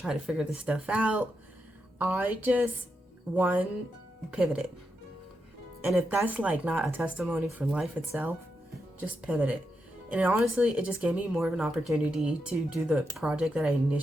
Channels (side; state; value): both; normal; correlation 0.85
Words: to figure this stuff out, I just pivoted. And if that's like not a testimony for life itself, just pivot it. And honestly, it just gave me more of an opportunity to do the project that I